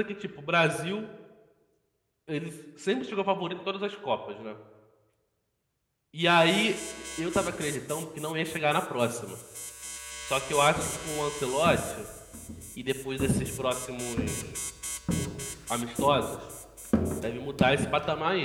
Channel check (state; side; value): identical; both; correlation 1.00